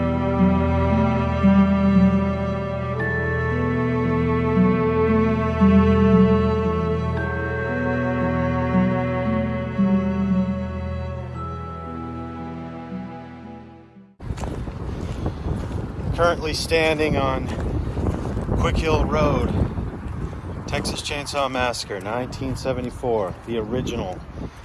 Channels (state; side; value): identical; both; correlation 1.00